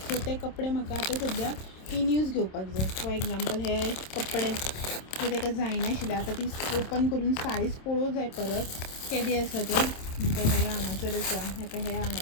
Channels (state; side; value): late; right; 27 ms